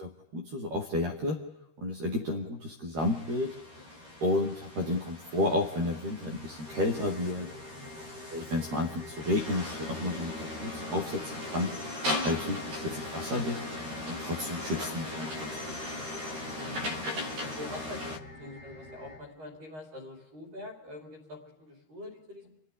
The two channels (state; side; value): late; left; 13 ms